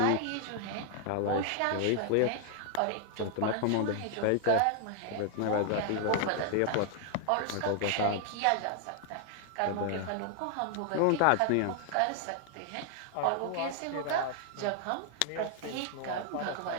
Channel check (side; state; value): both; different; correlation 0.00